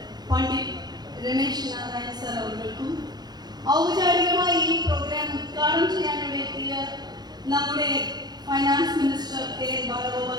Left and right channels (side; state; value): left; late; 0.20 ms